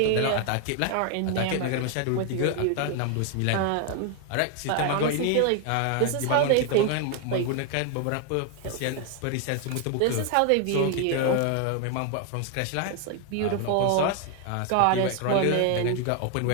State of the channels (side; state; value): both; different; correlation 0.00